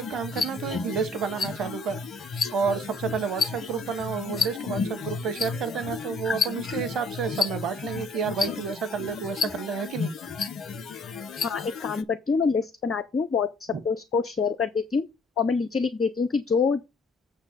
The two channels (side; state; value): both; normal; correlation 0.59